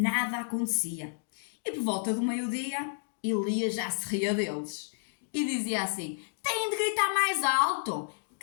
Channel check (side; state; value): right; silent; digital silence